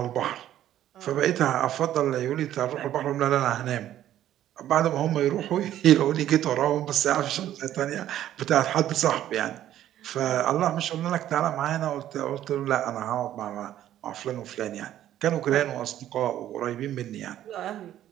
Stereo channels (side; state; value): left; quieter; 12.1 dB